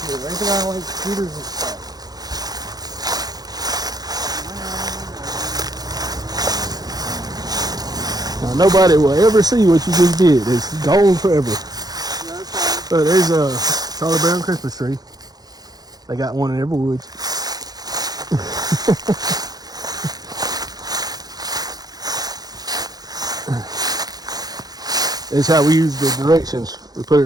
kid. I think I like scooters and stuff. Now, nobody will ever see what you just did. It's gone forever. Yeah, that's fine. So there's a Charlie Brown Christmas tree. They got one in every woods. That's how we use the directions. We put it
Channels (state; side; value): late; left; 0.19 ms